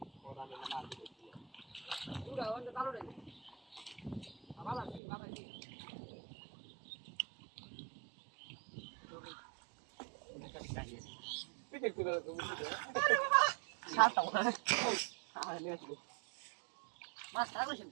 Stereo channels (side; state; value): left; drops out; at 5.0 s